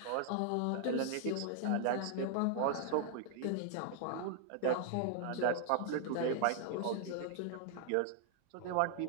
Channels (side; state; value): both; different; correlation 0.00